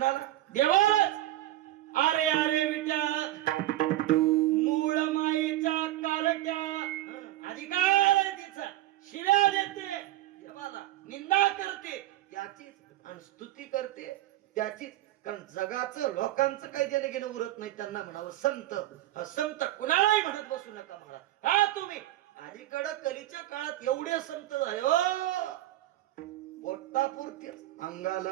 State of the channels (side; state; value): left; quieter; 15.1 dB